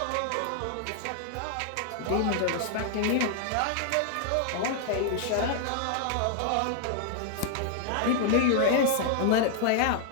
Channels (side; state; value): both; different; correlation 0.00